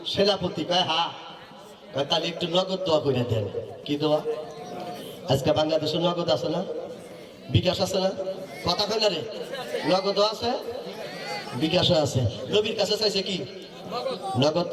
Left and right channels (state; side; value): identical; both; correlation 1.00